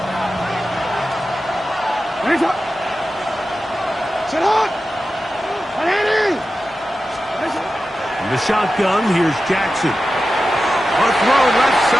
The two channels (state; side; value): normal; both; correlation 0.93